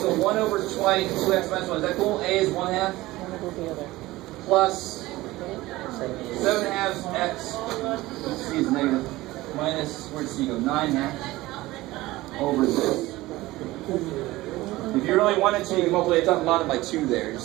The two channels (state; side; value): quieter; left; 18.4 dB